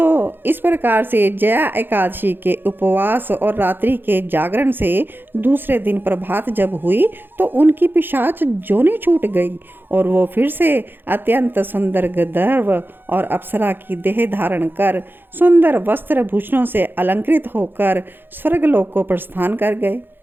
इस प्रकार से जया एकादशी के उपवास और रात्रि के जागरण से दूसरे दिन प्रभात जब हुई तो उनकी पिशाच जोनी छूट गई और वो फिर से अत्यंत सुंदर गंधर्व और अप्सरा की देह धारण कर सुंदर वस्त्र भूषणों से अलंकृत होकर स्वर्गलोक को प्रस्थान कर गए।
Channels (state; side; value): late; left; 0.098 ms